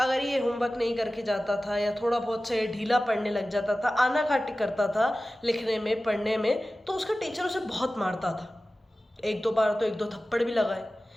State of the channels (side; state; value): both; normal; correlation 0.96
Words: ये होमवर्क नहीं करके जाता था, या थोड़ा बहुत से ढीला पढ़ने लग जाता था, आनाकानी करता था लिखने में पढ़ने में, तो उसका टीचर उसे बहुत मारता था। एक दो बार तो एक दो थप्पड़ भी लगाए।